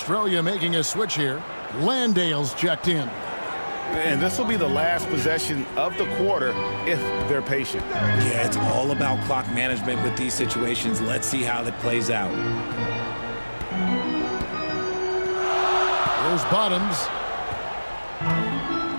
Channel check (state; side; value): inverted; both; correlation -1.00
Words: making a switch here. Landale's checked in. And this will be the last possession of the quarter if they're patient. Yeah, it's all about clock management with these situations. Let's see how that plays out. There's Bottoms.